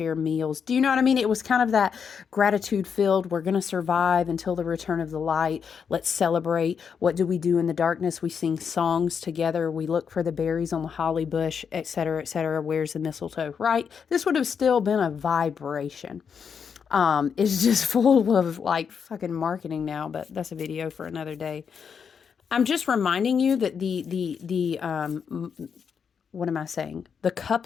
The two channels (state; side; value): quieter; right; 6.7 dB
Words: meals. Do you know what I mean? It was kind of that gratitude filled. We're going to survive until the return of the light. Let's celebrate. What do we do in the darkness? We sing songs together. We look for the berries on the holly bush, etc., etc. Where's the mistletoe, right? This would have still been a vibration. It's just full of like fucking marketing now, but that's a video for another day. I'm just reminding you that what am I saying? The